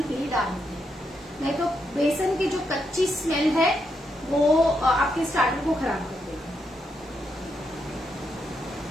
ही डालेंगे, नहीं तो बेसन की जो कच्ची स्मेल है वो आपके स्टार्टर को खराब कर देगी।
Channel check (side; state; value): both; normal; correlation 0.81